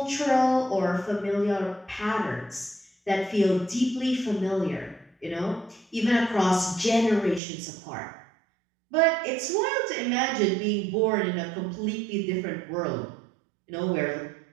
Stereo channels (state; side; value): drops out; left; at 7.4 s